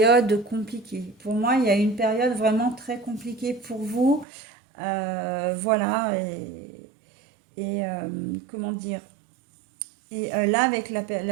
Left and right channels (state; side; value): drops out; left; at 4.2 s